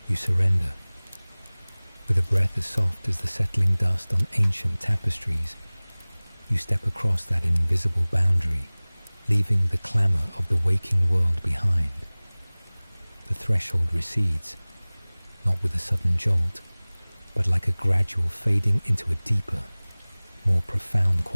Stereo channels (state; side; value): inverted; both; correlation -1.00